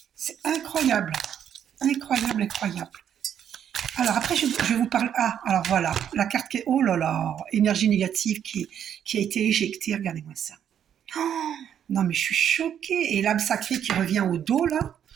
C'est incroyable. Incroyable, incroyable. Alors après, je vous parle. Ah, alors voilà, la carte qui est. Oh là là, énergie négative qui a été éjectée. Regardez-moi ça. Oh, non, mais je suis choquée. Et l'âme sacrée qui revient au dos, là.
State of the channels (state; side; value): quieter; left; 9.3 dB